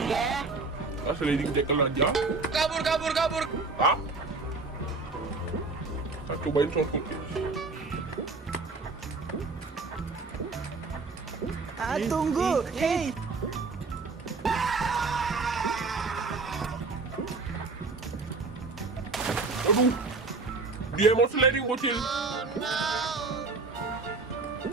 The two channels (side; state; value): left; quieter; 3.9 dB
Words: sliding tackle aja. Kabur. Hah? Kita cobain shortcut guys. Tunggu. Hey. Aduh, dia mau sliding Bocil.